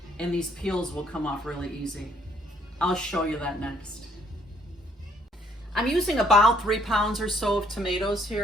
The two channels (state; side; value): normal; both; correlation 0.65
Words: and these peels will come off really easy. I'll show you that next. I'm using about 3 pounds or so of tomatoes